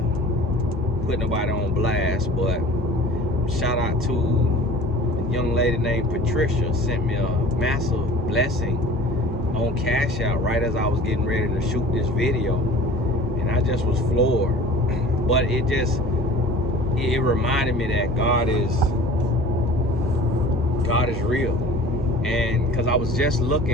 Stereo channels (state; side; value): normal; both; correlation 0.43